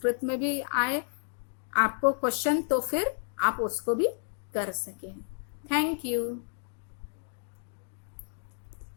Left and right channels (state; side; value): silent; right; digital silence